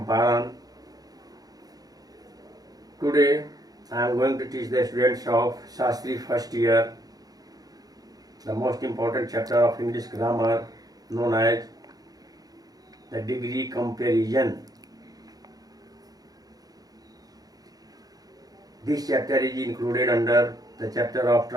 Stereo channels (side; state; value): left; late; 0.18 ms